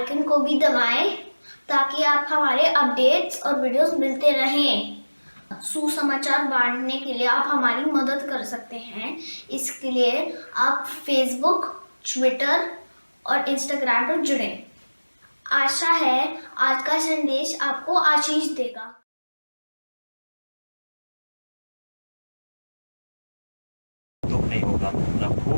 को भी दबाएं ताकि आप हमारे अपडेट्स और वीडियोस मिलते रहें। सुसमाचार बांटने के लिए आप हमारी मदद कर सकते हैं। इसके लिए आप फेसबुक, ट्विटर और इंस्टाग्राम पर जुड़ें। आशा है आज का संदेश आपको आशीष देगा। दुख नहीं होगा, ना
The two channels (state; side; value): inverted; both; correlation -1.00